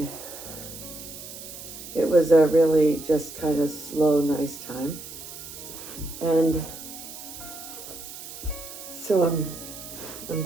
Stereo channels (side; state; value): right; noise; hiss, 12 dB below the sound